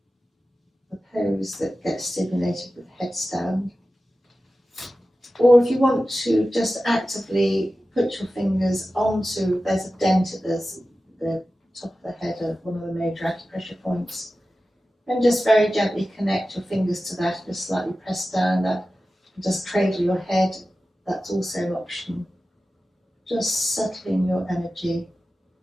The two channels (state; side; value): normal; both; correlation 0.94